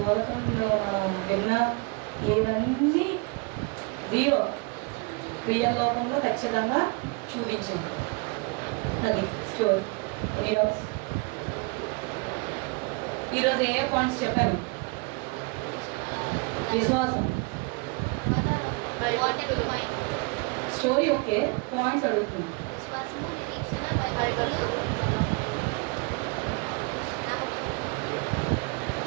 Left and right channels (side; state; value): left; quieter; 29.9 dB